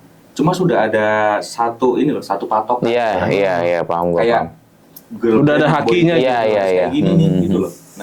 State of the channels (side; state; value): both; identical; correlation 1.00